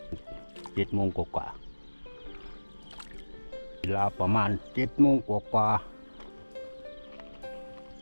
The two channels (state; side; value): inverted; both; correlation -1.00